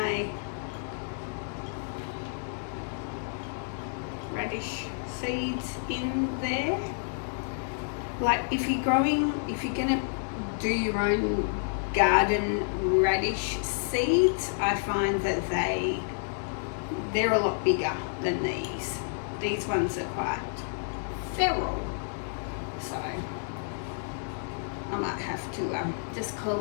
radish seeds in there. Like if you're gonna do your own garden radish seeds, I find that they're a lot bigger than these. These ones are quite feral, so I might have to just call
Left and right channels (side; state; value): right; silent; digital silence